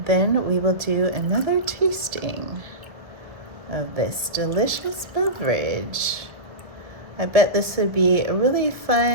Then we will do another tasting of this delicious beverage. I bet this would be a really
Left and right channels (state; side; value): late; left; 1.2 ms